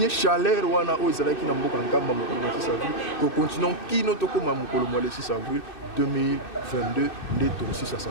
chaleur wana oyo ezalaki na mboka nkamba mokolo na 6 avril kocontinue kino tokóma mokolo mwa le 6 avril 2022 nde tokosisa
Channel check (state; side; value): late; right; 2.6 ms